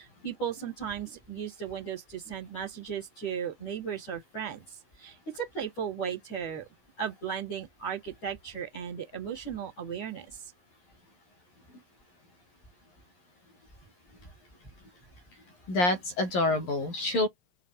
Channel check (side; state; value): right; late; 11 ms